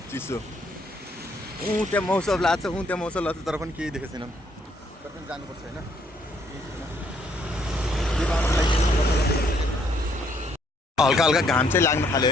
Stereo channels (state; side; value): normal; both; correlation 0.69